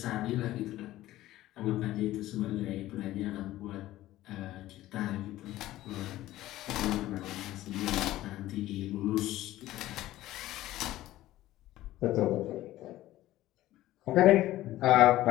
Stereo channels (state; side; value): quieter; right; 15.4 dB